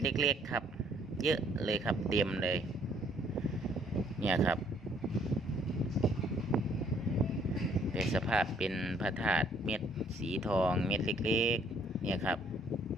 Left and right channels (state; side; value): normal; both; correlation 0.64